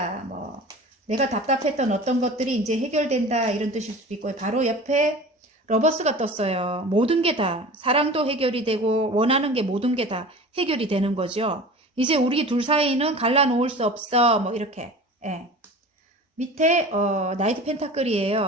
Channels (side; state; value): both; normal; correlation 0.38